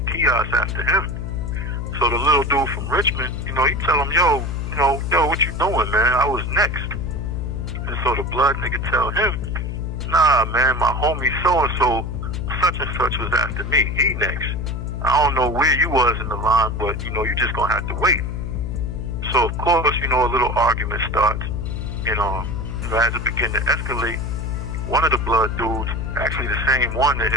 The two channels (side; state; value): left; noise; hum, 3 dB below the sound